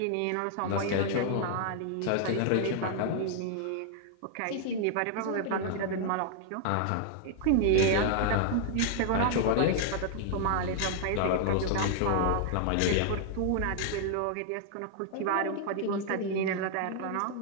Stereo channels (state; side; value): different; both; correlation 0.00